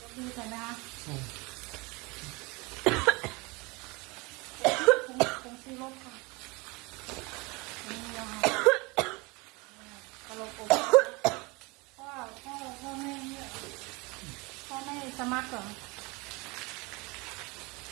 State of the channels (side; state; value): left; quieter; 26.3 dB